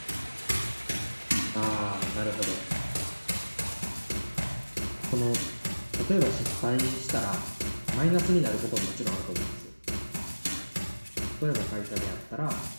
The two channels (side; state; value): both; inverted; correlation -1.00